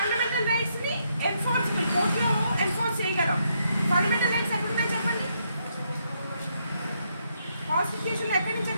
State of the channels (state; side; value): inverted; both; correlation -0.76